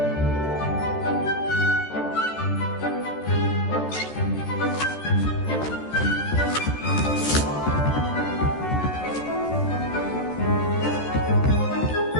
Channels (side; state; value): right; late; 13 ms